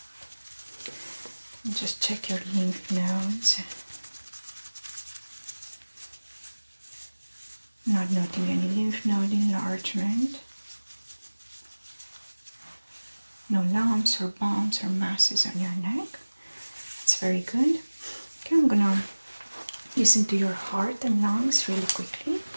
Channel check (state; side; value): inverted; both; correlation -1.00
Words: Just check your lymph nodes. Not noting any lymph node enlargement. No lumps or bumps or masses on your neck. It's very good. Okay, I'm gonna listen to your heart and lungs really quickly.